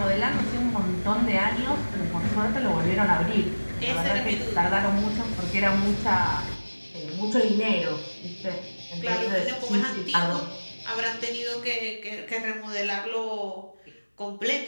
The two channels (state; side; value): inverted; both; correlation -1.00